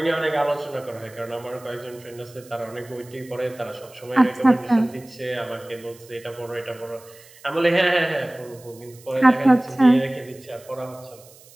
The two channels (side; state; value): right; noise; hiss, 24 dB below the sound